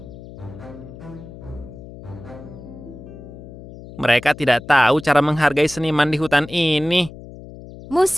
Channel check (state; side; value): noise; left; hum, 16 dB below the sound